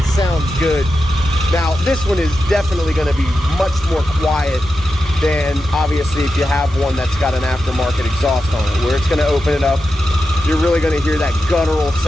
Sounds good. Now, this one is definitely going to be much more quiet than, obviously, if you have one that's got an aftermarket exhaust on it, where it's going to open it up. You're really going to hear that guttural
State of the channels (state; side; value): normal; both; correlation 0.90